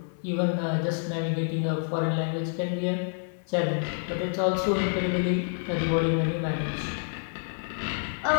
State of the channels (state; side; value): silent; right; 59 dB below the other